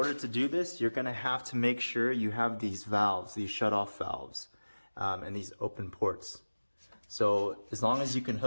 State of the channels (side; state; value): both; inverted; correlation -1.00